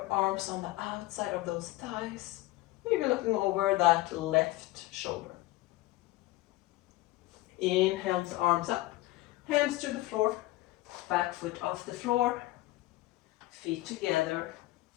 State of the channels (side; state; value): right; quieter; 18.4 dB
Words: arms on the outside of those thighs. Maybe looking over that left shoulder. Inhale, arms up. Hands to the floor. Back foot off the floor. Feet together.